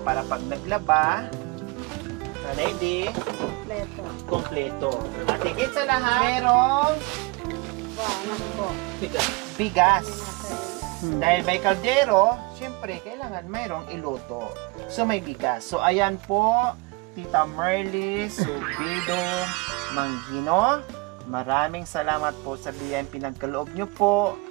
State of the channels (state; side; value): quieter; left; 26.0 dB